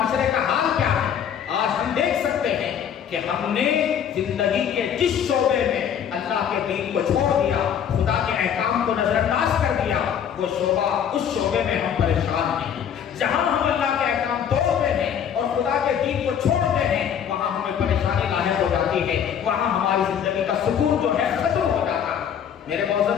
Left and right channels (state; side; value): quieter; right; 8.5 dB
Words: کا حال کیا ہے؟ آج ہم دیکھ سکتے ہیں کہ ہم نے زندگی کے جس شعبے میں اللہ کے دین کو چھوڑ دیا، خدا کے احکام کو نظر انداز کر دیا، وہ شعبہ اس شعبے میں ہم پریشان ہیں۔ جہاں ہم اللہ کے احکام توڑتے ہیں اور خدا کے دین کو چھوڑتے ہیں، وہاں ہمیں پریشانی لاحق ہو جاتی ہے، وہاں ہماری زندگی کا سکون جو ہے ختم ہو جاتا ہے۔ میرے